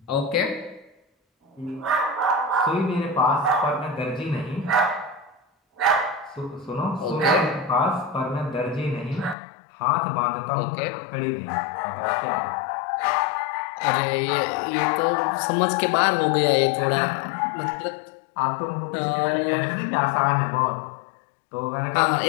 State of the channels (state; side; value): drops out; right; at 9.3 s